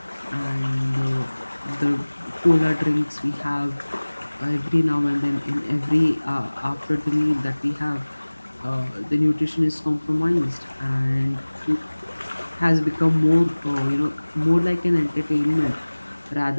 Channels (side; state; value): both; inverted; correlation -1.00